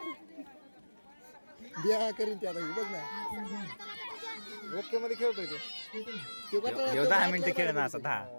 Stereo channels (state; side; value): inverted; both; correlation -1.00